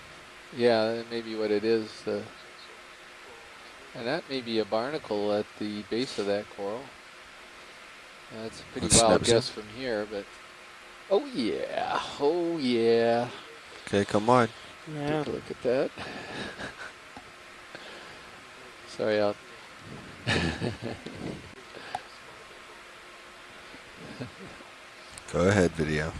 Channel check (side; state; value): both; identical; correlation 1.00